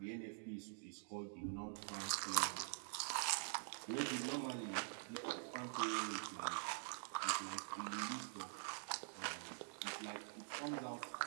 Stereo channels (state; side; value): silent; left; digital silence